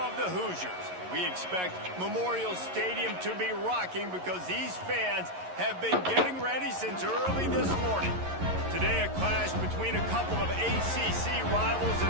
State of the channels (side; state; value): left; late; 11 ms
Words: the Hoosiers. We expect Memorial Stadium to be rocking because these fans have been getting ready since early this morning. Today, a clash between a couple of ACC rivals in